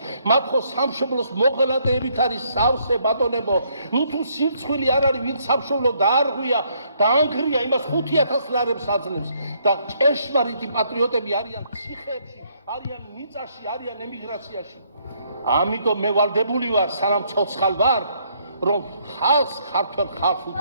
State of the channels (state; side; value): inverted; both; correlation -0.69